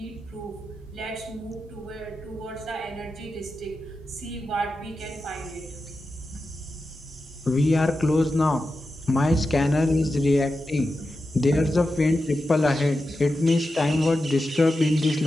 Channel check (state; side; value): normal; both; correlation 0.90